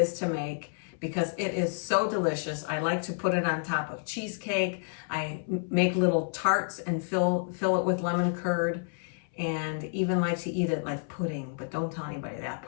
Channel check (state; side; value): silent; right; 58 dB below the other